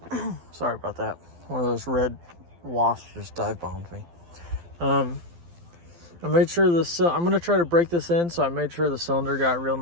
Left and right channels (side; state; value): left; late; 12 ms